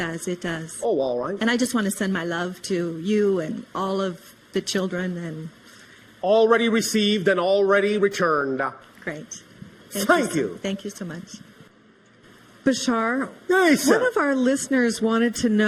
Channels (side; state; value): both; identical; correlation 1.00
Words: It does. Oh, all right. And I just want to send my love to you and all of the children. And Already received and already returned. great. Thank you. Thank you so much. Bashar, Yes, one sir. of our listeners wanted to